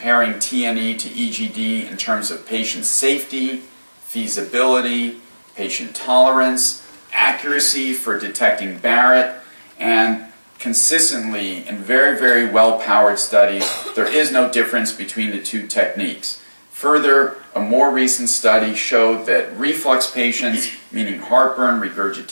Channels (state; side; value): inverted; both; correlation -1.00